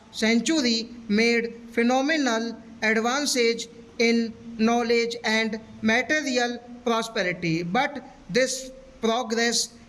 century, made phenomenal advances in knowledge and material prosperity, but this progress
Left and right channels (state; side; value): identical; both; correlation 1.00